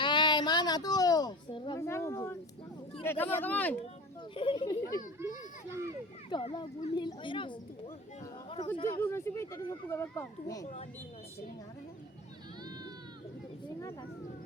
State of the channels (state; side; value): normal; both; correlation 0.35